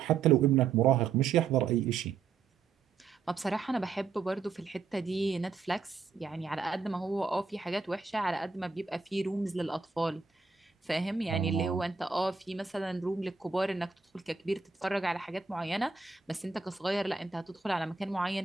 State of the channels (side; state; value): left; quieter; 5.1 dB